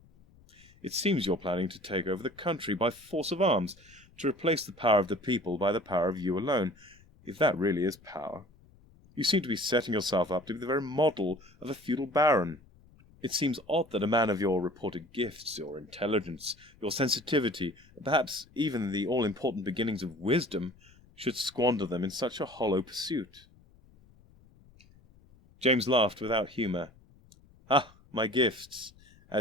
It seems you're planning to take over the country by force of arms, to replace the power of the people by the power of you alone, if that really is power. You seem to be setting yourself up to be the very model of a feudal baron. It seems odd that a man of your reported gifts, your intelligence, your sensitivity, perhaps even the all-important beginnings of wisdom, should squander them in such a hollow pursuit. James laughed without humour. Ah, my gifts.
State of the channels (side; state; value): left; noise; rumble, 27 dB below the sound